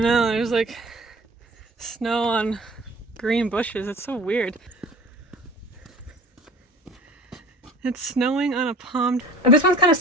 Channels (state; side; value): normal; both; correlation 0.44